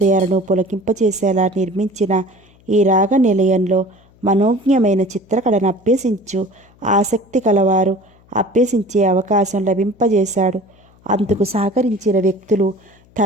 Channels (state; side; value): noise; left; hum, 30 dB below the sound